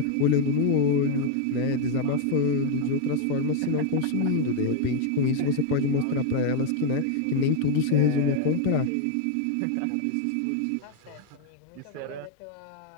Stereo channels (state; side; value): different; both; correlation 0.01